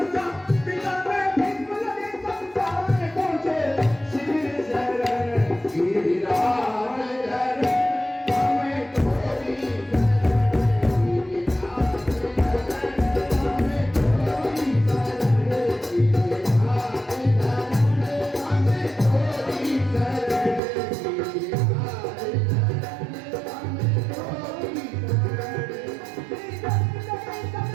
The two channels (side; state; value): left; drops out; at 20.6 s